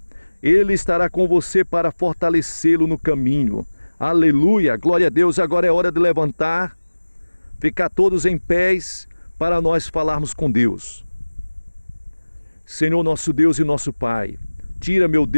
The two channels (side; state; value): both; inverted; correlation -1.00